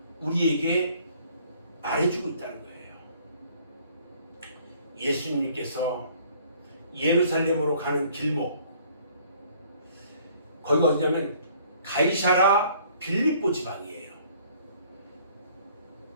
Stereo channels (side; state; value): both; inverted; correlation -0.58